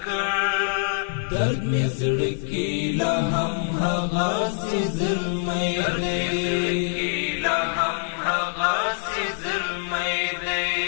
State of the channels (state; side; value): silent; right; digital silence